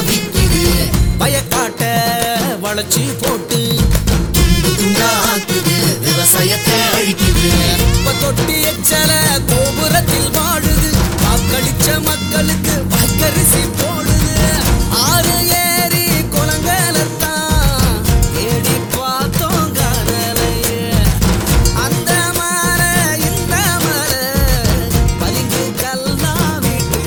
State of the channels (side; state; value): both; identical; correlation 1.00